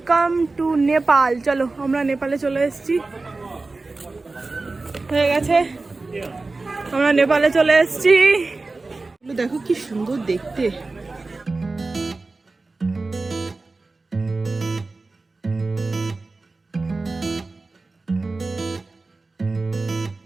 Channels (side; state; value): left; quieter; 3.5 dB